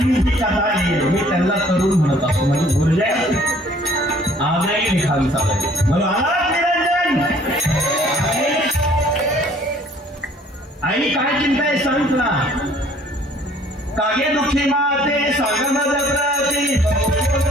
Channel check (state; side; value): normal; both; correlation 0.57